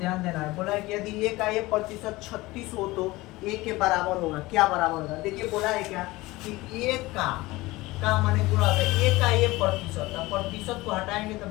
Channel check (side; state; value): right; quieter; 20.2 dB